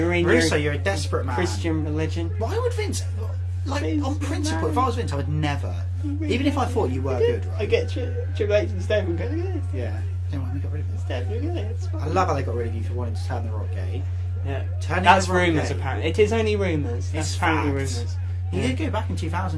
a desperate man. Christian religion. Why would Vince... Like, Vince on principle, McMahon. if I was Vince, I would never... Even if I thought you were good, right? I get Triple H and Steph and go, look at this. Yeah. Then why we got rid of it? Steph, look at this. I love how they got rid of you for wanting to turn the Rock gay. Yeah. That's rumours, gay. apparently. It is only rumours. That's apparently facts. rumours. He did go back in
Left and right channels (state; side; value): identical; both; correlation 1.00